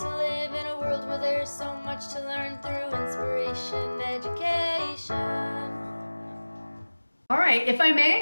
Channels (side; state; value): both; inverted; correlation -1.00